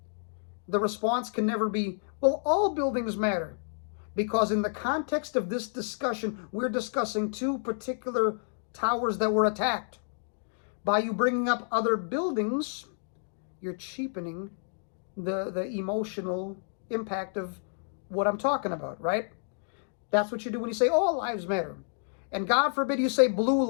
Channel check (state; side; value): silent; right; digital silence